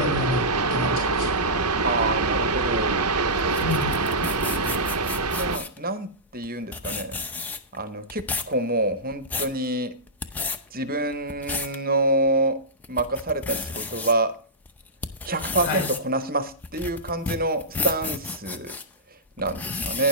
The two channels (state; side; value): normal; both; correlation -0.16